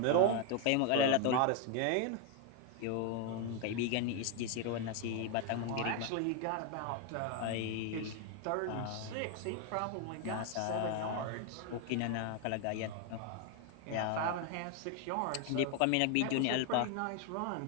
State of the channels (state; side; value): different; both; correlation 0.01